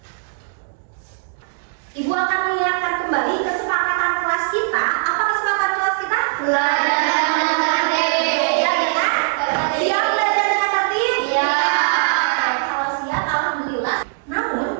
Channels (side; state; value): left; silent; 66 dB below the other